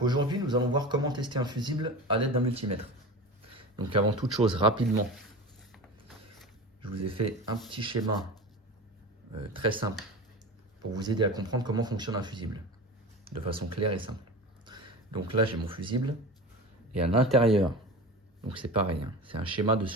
aujourd'hui, nous allons voir comment tester un fusible à l'aide d'un multimètre. Donc avant toute chose, rapidement, je vous ai fait un petit schéma très simple pour vous aider à comprendre comment fonctionne un fusible de façon claire et simple. Donc là, j'ai mon fusible et à l'intérieur, donc c'est pareil, hein, c'est un schéma de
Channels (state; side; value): normal; both; correlation 0.31